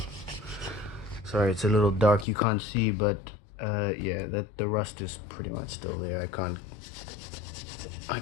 Sorry, it's a little dark, you can't see, but yeah, the rust is pretty much still there. I can't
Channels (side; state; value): right; drops out; at 2.2 s